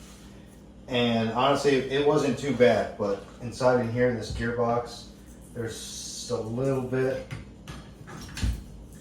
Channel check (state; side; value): identical; both; correlation 1.00